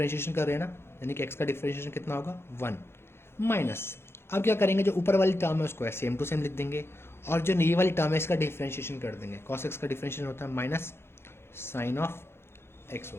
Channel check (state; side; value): late; right; 0.12 ms